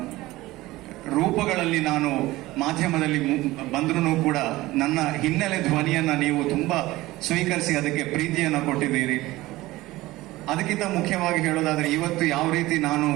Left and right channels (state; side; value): quieter; left; 18.4 dB